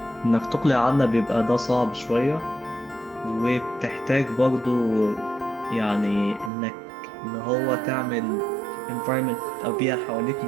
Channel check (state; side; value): drops out; left; at 6.5 s